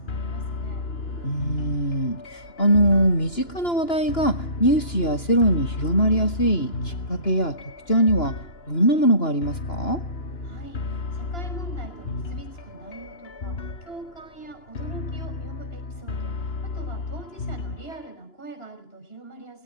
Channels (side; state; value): right; late; 2.9 ms